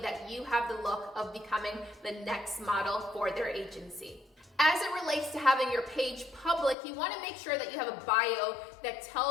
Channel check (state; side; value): drops out; right; at 6.8 s